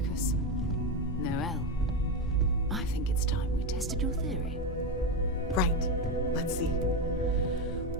Noel, I think it's time we tested your theory. Right. Let's see.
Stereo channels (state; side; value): normal; both; correlation 0.13